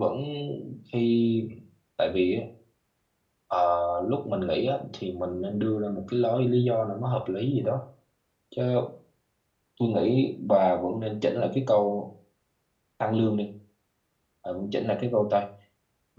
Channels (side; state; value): both; identical; correlation 1.00